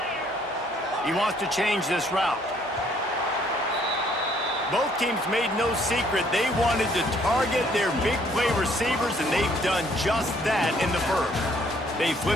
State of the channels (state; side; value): normal; both; correlation 0.64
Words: He wants to change this route. Both teams made no secret they wanted to target their big play receivers, and they've done just that in the first. They